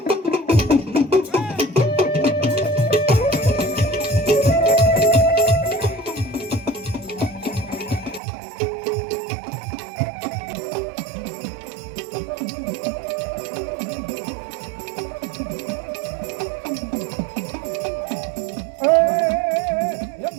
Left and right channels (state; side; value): drops out; left; at 8.2 s